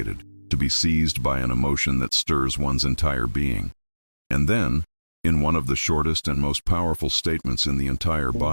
to be seized by an emotion that stirs one's entire being. And then, in one of the shortest and most powerful statements in the entire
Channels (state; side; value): inverted; both; correlation -1.00